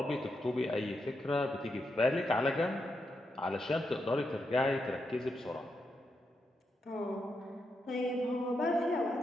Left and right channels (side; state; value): both; normal; correlation 0.84